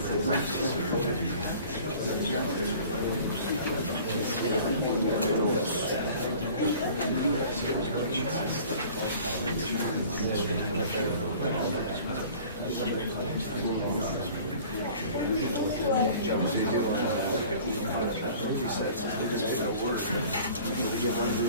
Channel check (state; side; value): inverted; both; correlation -0.46